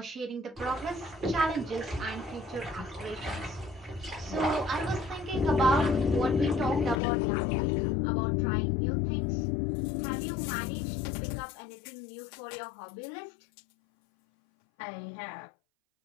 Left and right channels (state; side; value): drops out; right; at 7.0 s